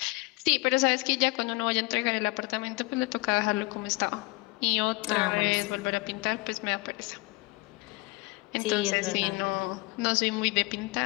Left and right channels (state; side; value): quieter; right; 24.4 dB